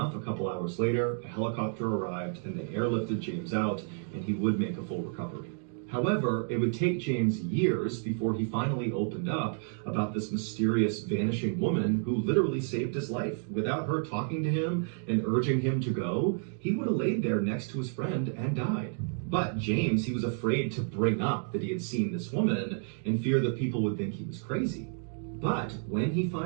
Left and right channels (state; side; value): silent; left; 57 dB below the other